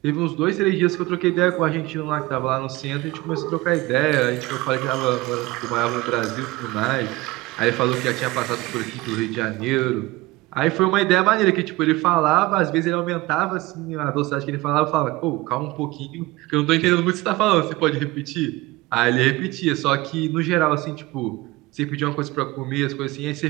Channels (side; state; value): left; quieter; 20.2 dB